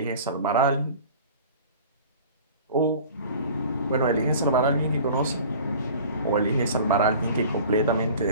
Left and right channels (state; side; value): inverted; both; correlation -0.43